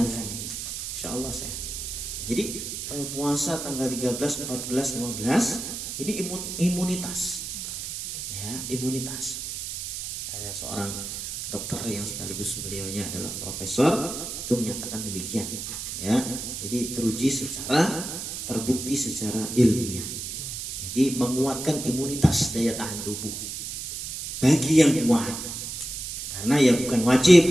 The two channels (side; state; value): right; noise; hiss, 6 dB below the sound